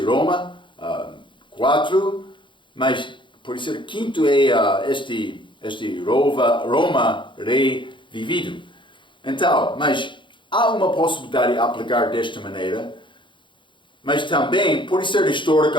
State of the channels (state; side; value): late; right; 0.23 ms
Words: Roma 4, mas por ser quinto é este Roma rei vivido. Então, mas há uma possibilidade de aplicar desta maneira, mas também pode ser